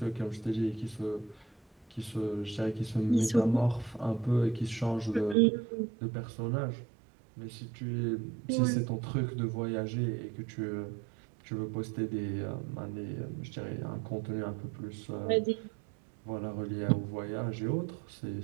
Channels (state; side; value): drops out; left; at 5.4 s